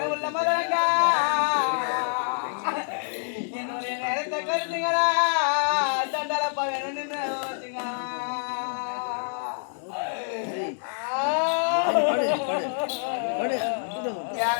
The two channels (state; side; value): silent; right; digital silence